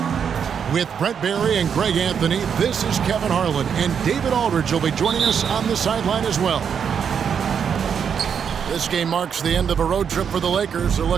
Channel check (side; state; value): left; quieter; 7.4 dB